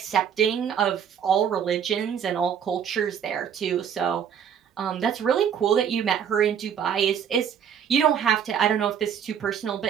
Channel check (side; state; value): left; quieter; 8.3 dB